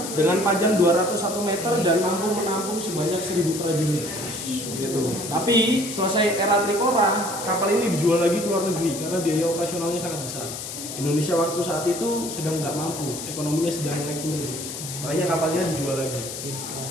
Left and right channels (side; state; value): left; noise; hiss, 8 dB below the sound